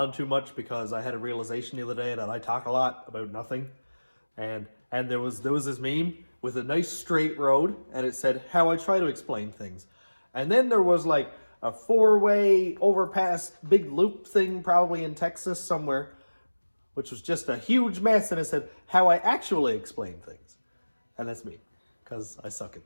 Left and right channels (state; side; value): inverted; both; correlation -1.00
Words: too much because I had a realization the other day that I talk a lot about nothing. And there was this meme with a nice straight road, and it said how I try to explain things. And then there was like a 4-way overpass big loop thing probably in Texas somewhere, which was just a huge mess, and it said how I actually explain things. And that's me, because I suck